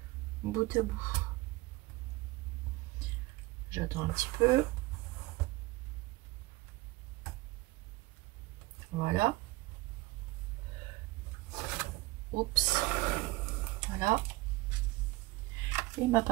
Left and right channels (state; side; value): quieter; left; 20.9 dB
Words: bout à bout. J'attends un petit peu. Voilà. Oups. Voilà. Et ma